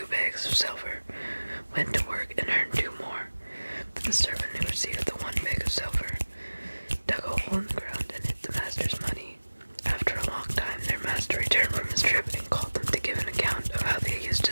bags of silver went to work and earned 2 more. But the servant who received the 1 bag of silver dug a hole in the ground and hid the master's money. After a long time, their master returned from his trip and called them to give an account of how they used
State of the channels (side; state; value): both; inverted; correlation -1.00